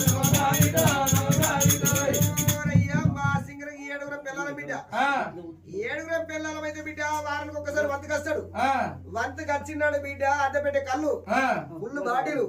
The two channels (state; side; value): identical; both; correlation 1.00